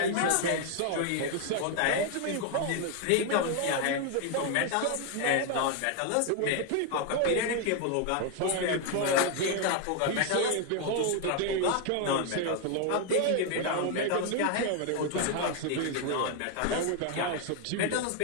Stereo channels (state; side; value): different; both; correlation 0.01